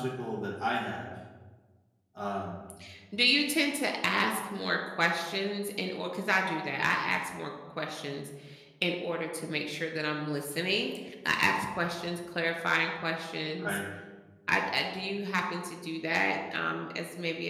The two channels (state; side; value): identical; both; correlation 1.00